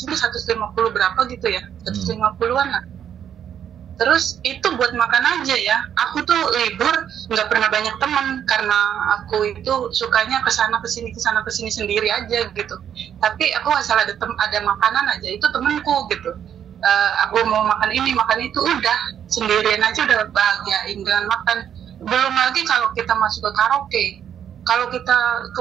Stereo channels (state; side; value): quieter; left; 9.2 dB